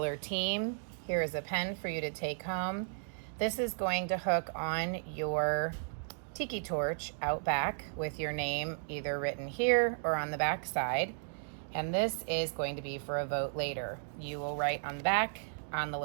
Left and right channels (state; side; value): silent; left; digital silence